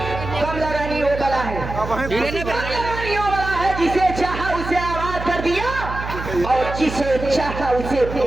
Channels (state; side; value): noise; right; hum, 8 dB below the sound